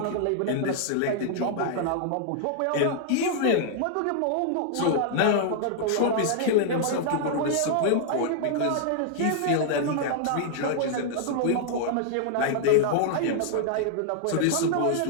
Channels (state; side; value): different; both; correlation -0.01